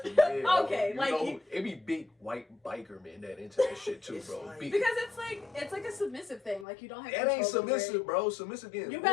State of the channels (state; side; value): drops out; right; at 6.7 s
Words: thing. Yeah, okay, like it be big white biker men that into that shit too, bro. Like, because it's like a submissive thing. Like you don't have. It ain't submissive, bro. Submissive again. You